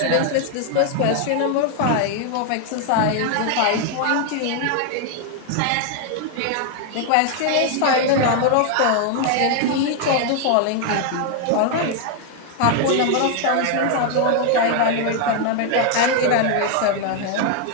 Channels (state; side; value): different; both; correlation 0.00